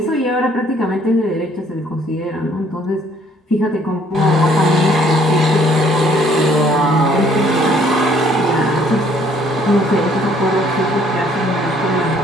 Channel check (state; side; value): normal; both; correlation 0.62